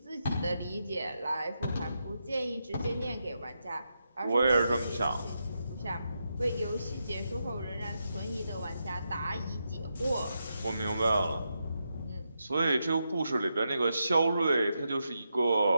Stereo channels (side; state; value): both; inverted; correlation -0.85